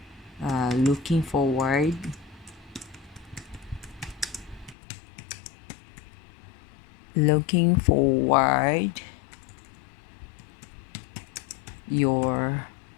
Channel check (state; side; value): drops out; right; at 4.8 s